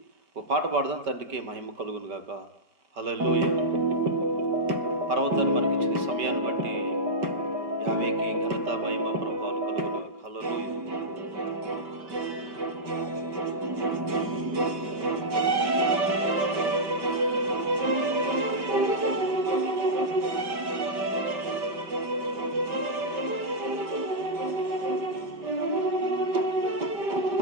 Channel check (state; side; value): late; left; 5.2 ms